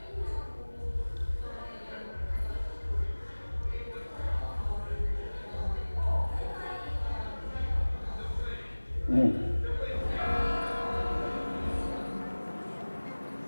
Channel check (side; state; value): both; inverted; correlation -1.00